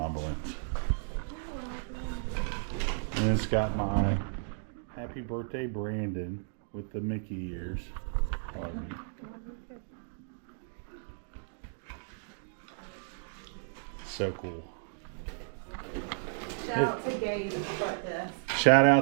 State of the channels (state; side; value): silent; left; digital silence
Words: balloons. And it's got my happy birthday Brandon with the Mickey ears. So cool. Shout out to Gabe at the front desk. Shout